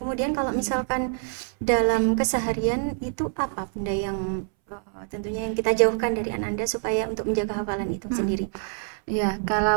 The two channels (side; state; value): left; silent; 61 dB below the other